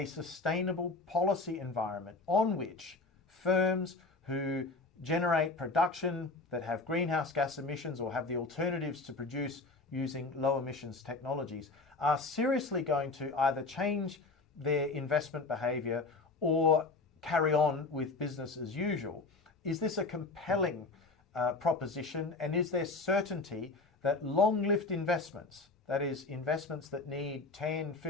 sustainable policy environment on which firms who generate production that have greenhouse gas emissions or have the alternatives to produce using low emissions technologies are seriously going to either change their investment behaviour or carry on with business as usual. Is this a compelling proposition, and is there certainty that long-lived investments, that is, investments that need 10,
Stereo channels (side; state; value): right; quieter; 3.5 dB